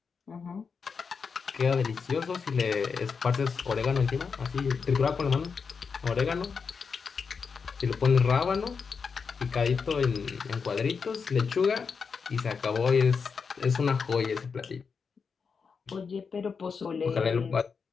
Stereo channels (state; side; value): quieter; right; 5.6 dB